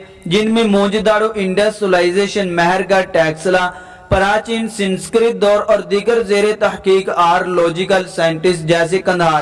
جن میں موجودارو انڈس سولائزیشن، مہرگڑھ، ٹیکسلا، پراچین سنسکرت دور اور دیگر زیر تحقیق آرلوجیکل سائنٹسٹ جیسے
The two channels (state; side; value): identical; both; correlation 1.00